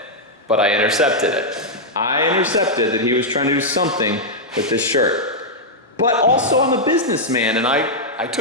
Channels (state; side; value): normal; both; correlation -0.05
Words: But I intercepted it. I intercepted that he was trying to do something with this shirt. But also I'm a businessman and I